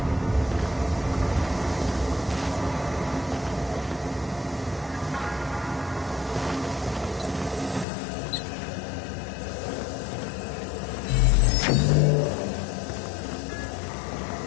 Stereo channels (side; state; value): right; drops out; at 7.9 s